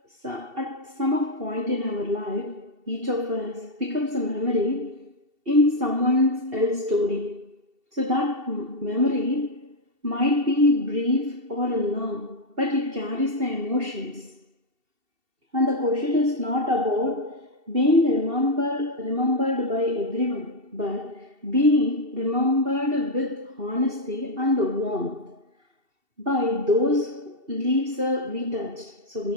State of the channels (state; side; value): late; left; 2.7 ms